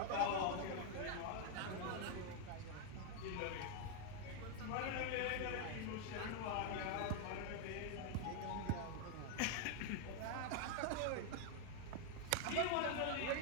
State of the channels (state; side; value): different; both; correlation 0.00